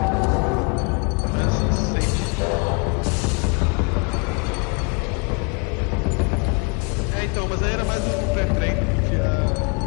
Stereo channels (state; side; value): quieter; right; 33.5 dB